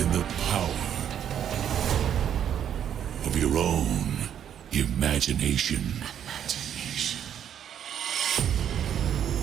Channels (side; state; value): left; quieter; 9.4 dB